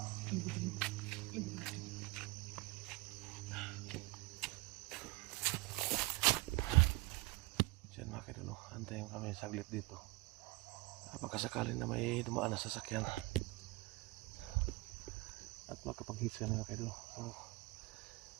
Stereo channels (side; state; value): left; quieter; 23.2 dB